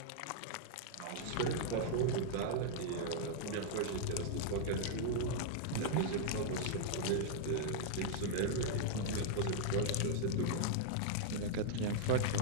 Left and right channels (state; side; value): different; both; correlation -0.01